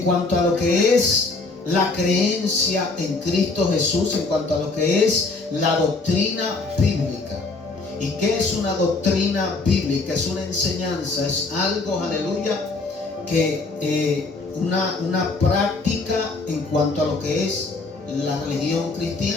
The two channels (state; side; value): quieter; right; 3.6 dB